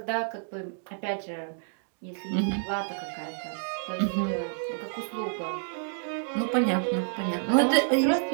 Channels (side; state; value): left; silent; digital silence